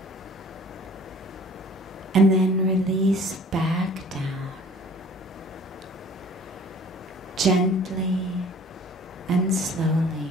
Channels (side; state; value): both; normal; correlation 0.50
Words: And then release back down, gently and slowly,